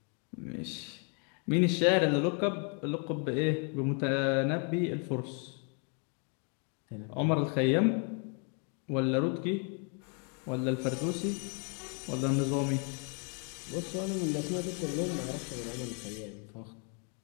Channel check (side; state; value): right; quieter; 39.2 dB